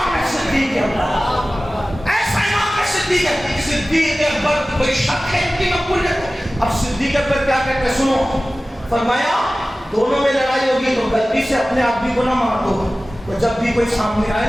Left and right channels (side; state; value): both; normal; correlation 0.97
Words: ہے صدیق اکبر، ایسا امام ہے صدیق اکبر. صدیق اکبر کوئی شک ہے ان کی مقبولیت؟ اب صدیق اکبر کیا کہتے سنو، فرمایا دونوں میں لڑائی ہوگی تو غلطی سے اپنے آدمی کو نہ مار دو. تو جب بھی کوئی سامنے آئے